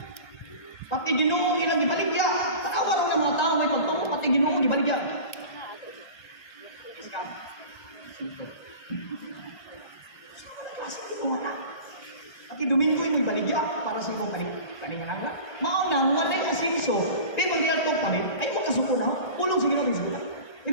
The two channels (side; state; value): right; late; 1.9 ms